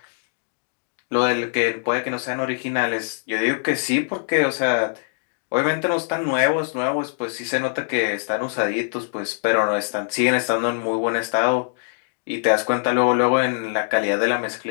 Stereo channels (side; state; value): right; silent; digital silence